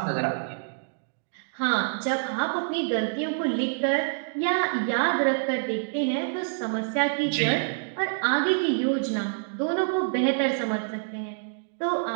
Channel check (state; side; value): silent; left; digital silence